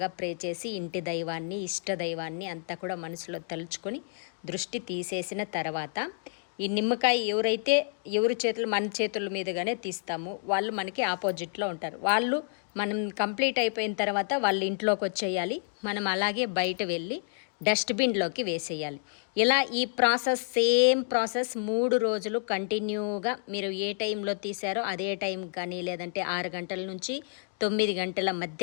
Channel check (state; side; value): silent; right; digital silence